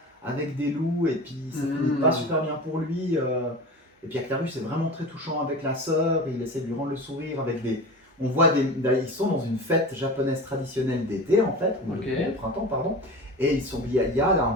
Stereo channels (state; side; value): normal; both; correlation 0.32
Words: avec des loups, et puis ça finit pas super bien pour lui. Et puis Actarus est vraiment très touchant avec la sœur, il essaie de lui rendre le sourire avec des... On voit ils sont dans une fête japonaise traditionnelle d'été en fait, ou Ok. de printemps pardon, et il y a là un